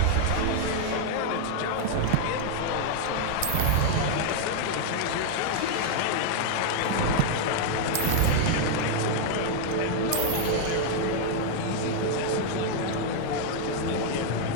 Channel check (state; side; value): different; both; correlation 0.00